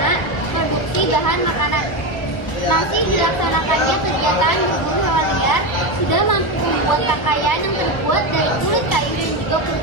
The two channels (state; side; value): late; right; 1.0 ms